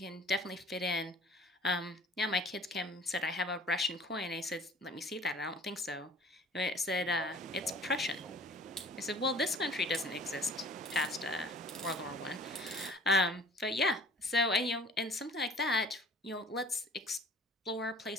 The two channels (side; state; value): both; normal; correlation 0.49